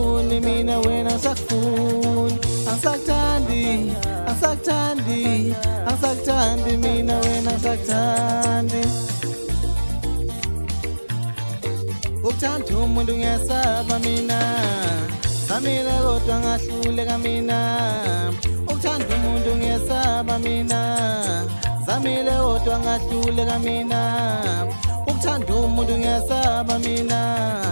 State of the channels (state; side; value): inverted; both; correlation -1.00